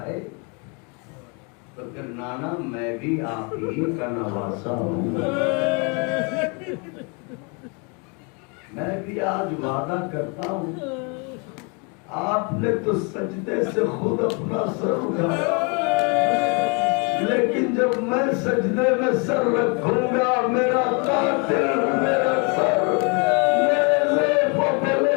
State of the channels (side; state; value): right; quieter; 33.6 dB